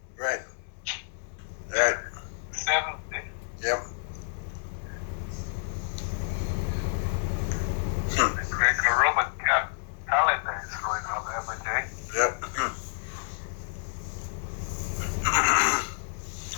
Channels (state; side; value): silent; right; digital silence